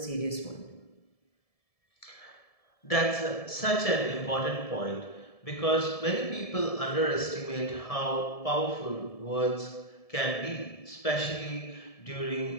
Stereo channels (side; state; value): right; late; 1.7 ms